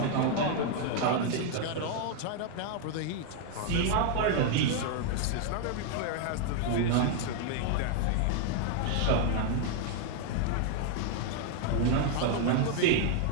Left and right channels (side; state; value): both; different; correlation 0.00